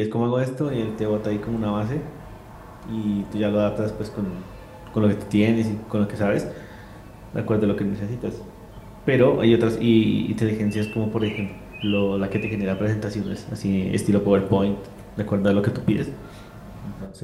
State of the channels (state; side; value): identical; both; correlation 1.00